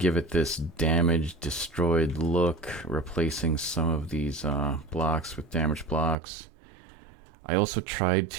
it this damaged, destroyed look, replacing some of these blocks with damaged blocks. I also tried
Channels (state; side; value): drops out; left; at 6.2 s